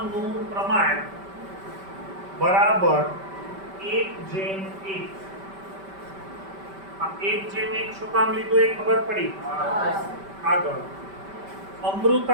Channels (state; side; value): late; left; 5.1 ms